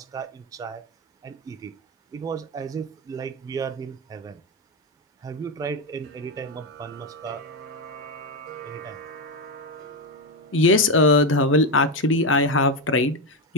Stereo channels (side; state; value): both; normal; correlation 0.09